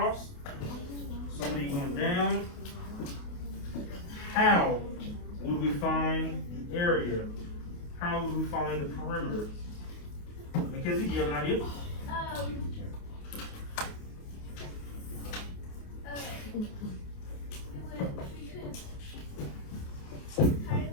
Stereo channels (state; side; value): late; right; 28 ms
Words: so many going down. How would we find the area? How would we find the perimeter? Mackenzie, do you have an idea?